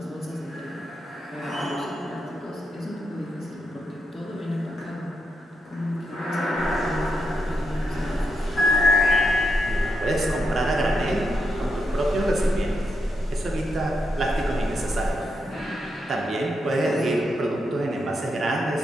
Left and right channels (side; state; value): both; normal; correlation 0.83